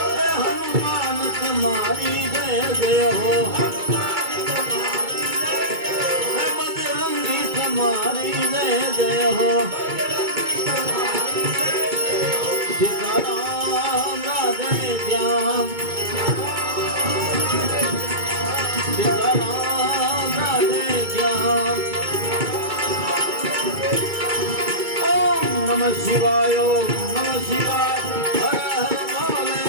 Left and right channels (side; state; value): left; late; 2.3 ms